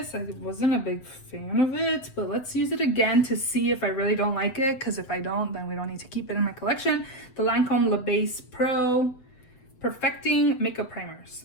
I wasn't a big fan of it, but let's use it again to see if I really don't like it, because if I don't, then we don't need to keep it in my collection. The Lancome Le Base Pro Perfecting Makeup Primers.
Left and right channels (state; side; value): late; right; 7.8 ms